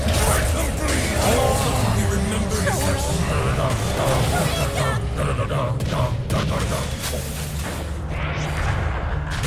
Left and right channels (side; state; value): both; identical; correlation 1.00